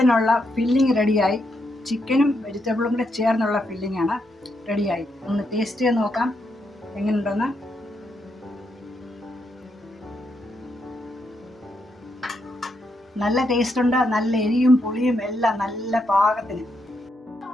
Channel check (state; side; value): normal; both; correlation 0.80